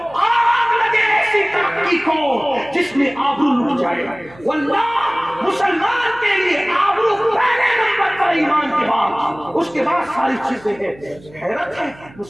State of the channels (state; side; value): noise; right; hum, 23 dB below the sound